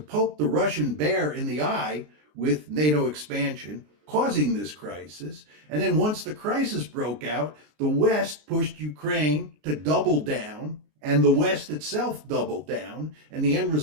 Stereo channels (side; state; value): left; late; 33 ms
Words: poke the Russian bear in the eye with NATO expansion, causing this crisis. And then once the crisis broke out, the West pushed Ukraine to double down, and the West itself doubled down. And the end